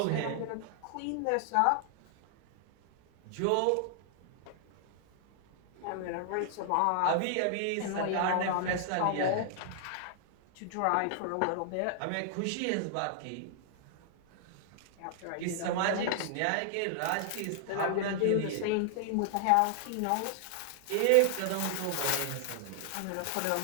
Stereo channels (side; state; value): both; different; correlation -0.01